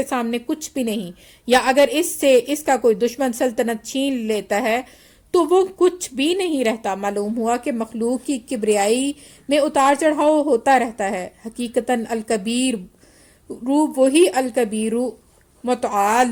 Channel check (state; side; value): identical; both; correlation 1.00